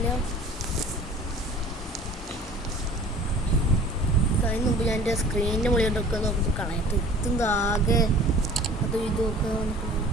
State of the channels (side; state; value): both; normal; correlation 0.47